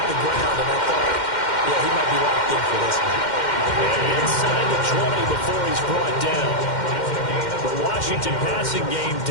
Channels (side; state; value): right; late; 2.1 ms